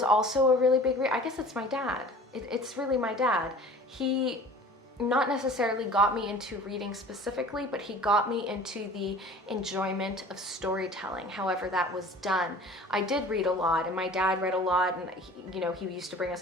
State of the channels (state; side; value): normal; both; correlation 0.44